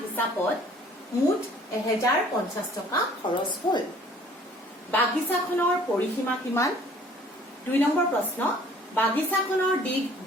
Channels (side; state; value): both; normal; correlation 0.54